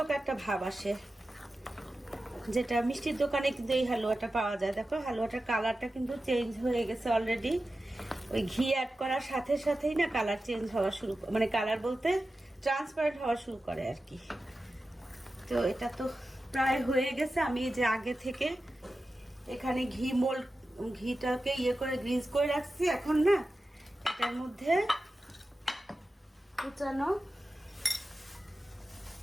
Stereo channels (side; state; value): both; normal; correlation 0.93